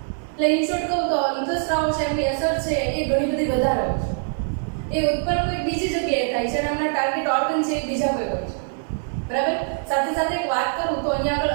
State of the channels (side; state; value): left; silent; 57 dB below the other